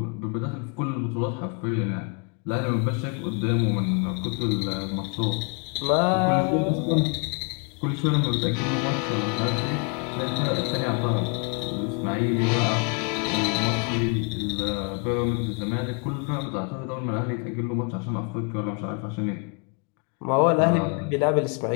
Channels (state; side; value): quieter; right; 35.3 dB